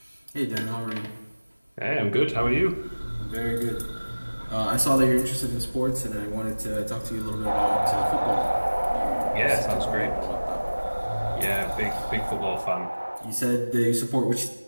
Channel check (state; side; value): inverted; both; correlation -1.00